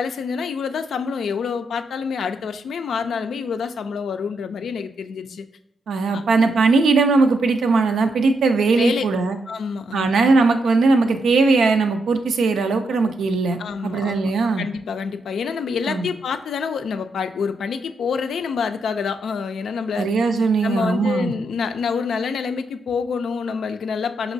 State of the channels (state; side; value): normal; both; correlation 0.80